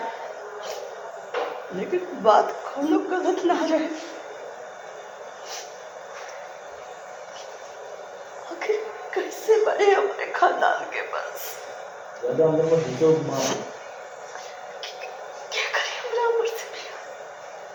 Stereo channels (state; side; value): identical; both; correlation 1.00